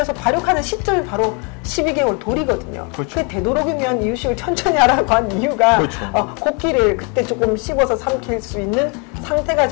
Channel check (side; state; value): right; quieter; 34.4 dB